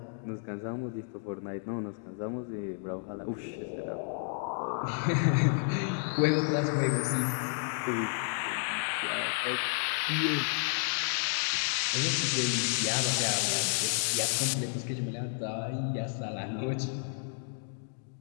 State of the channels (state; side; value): silent; right; 57 dB below the other